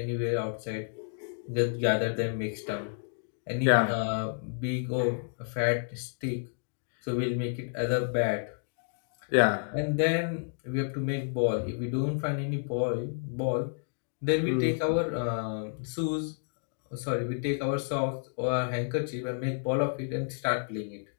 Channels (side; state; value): right; silent; digital silence